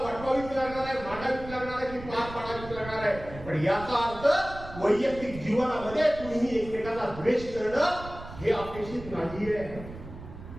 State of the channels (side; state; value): right; noise; rumble, 13 dB below the sound